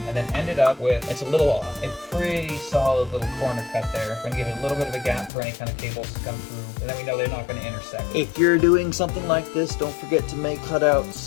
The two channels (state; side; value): drops out; right; at 5.3 s